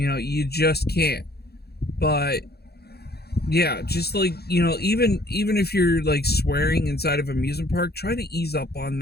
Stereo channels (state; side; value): late; right; 0.47 ms